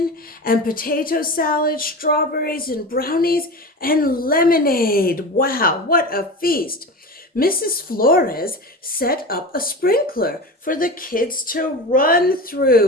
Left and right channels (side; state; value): both; normal; correlation 0.28